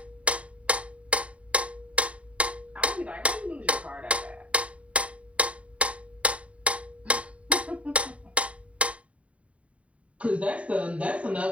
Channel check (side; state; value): left; late; 0.064 ms